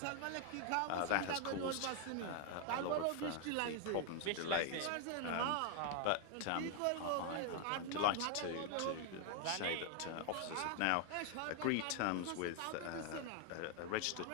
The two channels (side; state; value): both; different; correlation 0.00